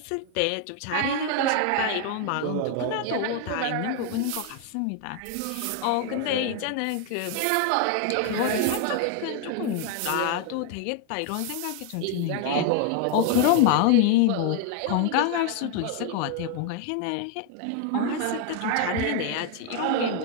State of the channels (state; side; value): different; both; correlation 0.00